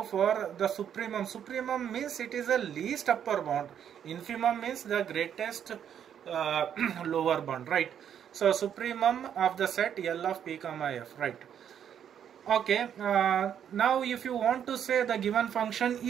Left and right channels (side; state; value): left; quieter; 9.0 dB